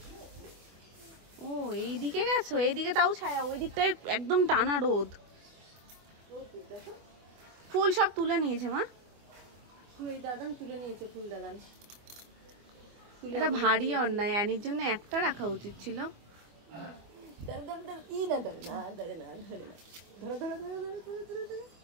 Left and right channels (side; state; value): left; late; 24 ms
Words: ও এইদিকে গেছো? এইদিকে তাও ছায়া, ওই দিকটায় একদম টানা রোদ। ফুল সব তুলে নিয়েছে মা। ফুল দাদান তুলে নিয়েছে, ফুল দাদান। এটা ভারী অন্যায়, অ্যানির জন্য একটা রাখা উচিত ছিল।